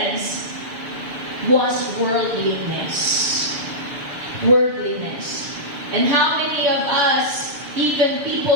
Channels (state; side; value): late; left; 6.9 ms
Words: was worldliness. Worldliness. And how many of us, even